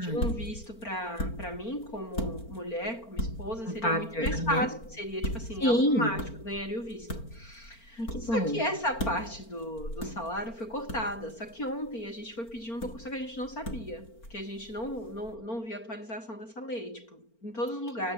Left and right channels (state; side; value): late; right; 4.4 ms